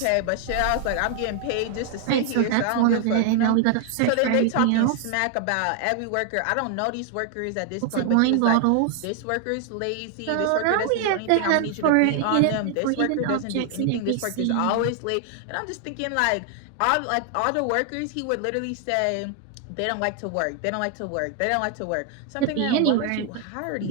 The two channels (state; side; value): different; both; correlation 0.00